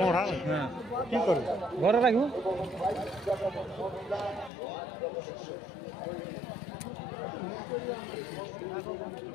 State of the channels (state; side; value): drops out; right; at 4.5 s